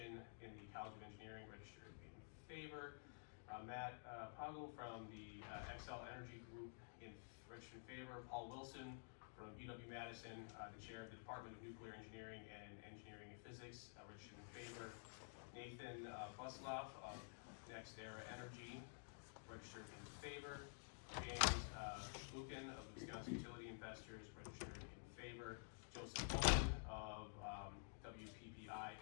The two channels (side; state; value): right; silent; digital silence